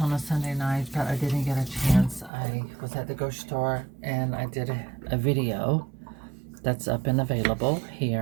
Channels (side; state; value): left; drops out; at 2.3 s